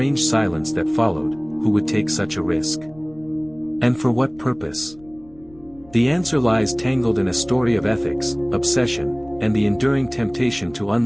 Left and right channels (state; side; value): noise; left; rumble, 25 dB below the sound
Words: silence that followed. Who would take such a risk? And for what purpose? The answer lies tangled in a story of ethics, obsession, and the enduring temptation to